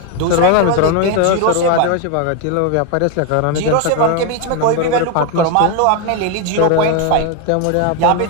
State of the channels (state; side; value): different; both; correlation 0.01